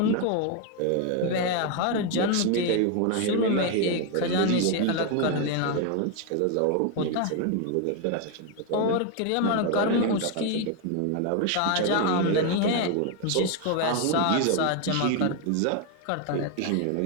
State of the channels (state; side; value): different; both; correlation 0.01